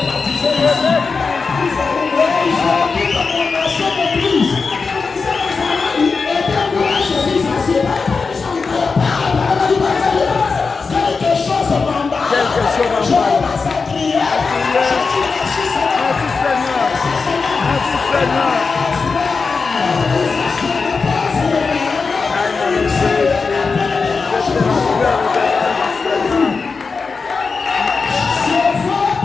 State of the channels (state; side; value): quieter; right; 4.7 dB